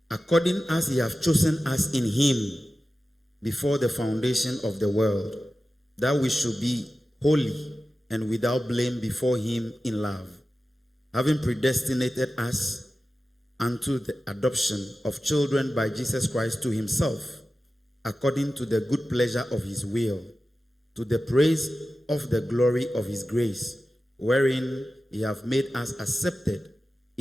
According as he hath chosen us in him before the foundation of the world, that we should be holy and without blame before him in love, having predestinated us unto the adoption of children by Jesus Christ to himself, according to the good pleasure of his will, to the praise of the glory of his grace, wherein he hath made us accepted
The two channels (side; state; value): both; normal; correlation 0.94